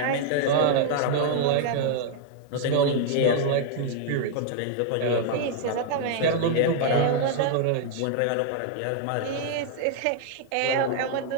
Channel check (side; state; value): both; different; correlation 0.00